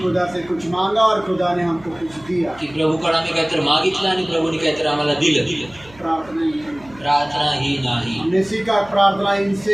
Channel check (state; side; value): noise; right; hum, 23 dB below the sound